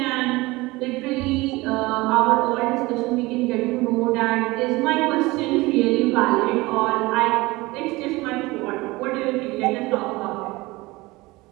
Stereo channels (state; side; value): quieter; left; 21.5 dB